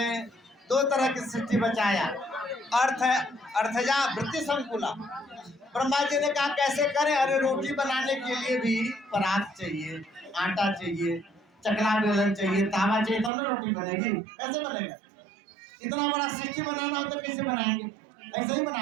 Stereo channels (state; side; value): drops out; left; at 13.3 s